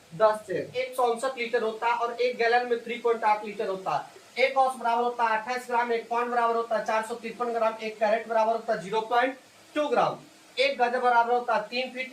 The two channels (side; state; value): both; identical; correlation 1.00